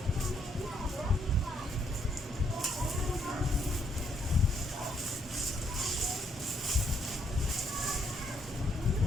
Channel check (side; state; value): both; normal; correlation 0.72